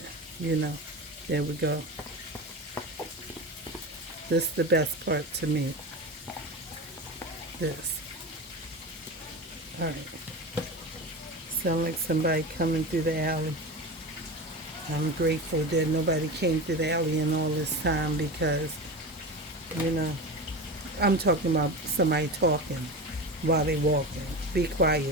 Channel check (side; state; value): both; normal; correlation 0.25